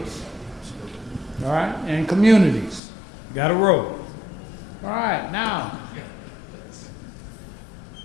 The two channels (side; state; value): right; drops out; at 2.8 s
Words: all right, and communities. Got a role. All right, now.